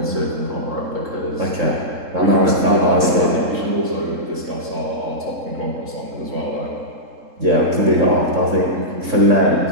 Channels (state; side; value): late; left; 3.7 ms